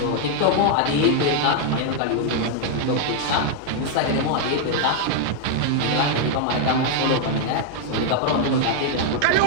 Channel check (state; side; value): different; both; correlation 0.00